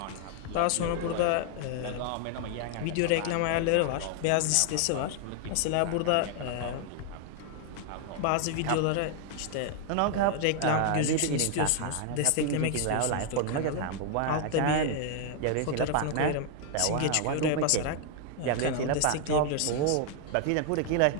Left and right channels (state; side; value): different; both; correlation 0.00